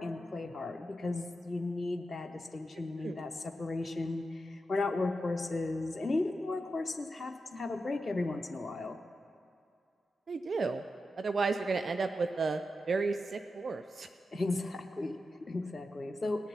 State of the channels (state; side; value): normal; both; correlation 0.89